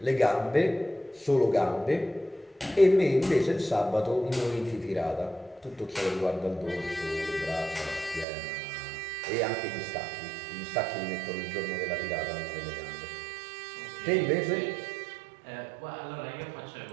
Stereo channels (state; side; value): drops out; left; at 8.2 s